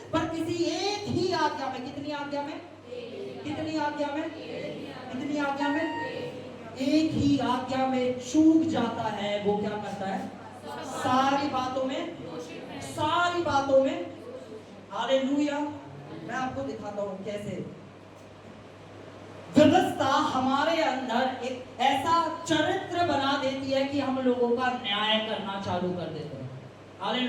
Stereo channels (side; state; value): both; identical; correlation 1.00